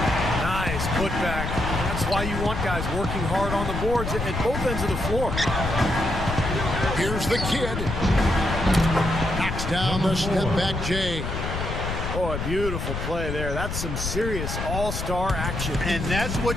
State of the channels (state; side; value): noise; left; rumble, 4 dB below the sound